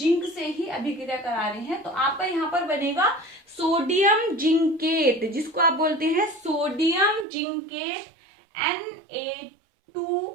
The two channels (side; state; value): left; drops out; at 7.2 s